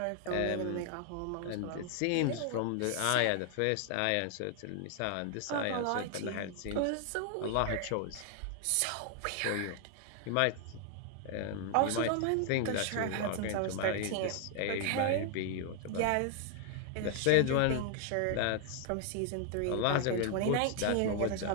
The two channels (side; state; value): both; different; correlation 0.00